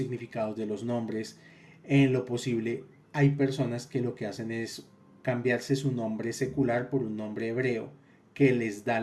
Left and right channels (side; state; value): both; identical; correlation 1.00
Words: de los nombres. En lo posible, hay personas que lo que hacen es cambiarse su nombre secular por un nombre hebreo que les da